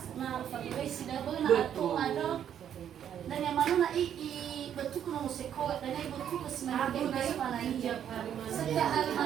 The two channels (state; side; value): quieter; left; 9.5 dB